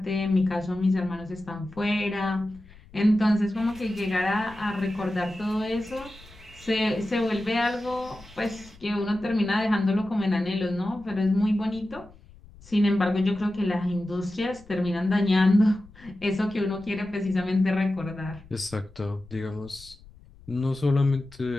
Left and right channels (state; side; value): noise; left; rumble, 23 dB below the sound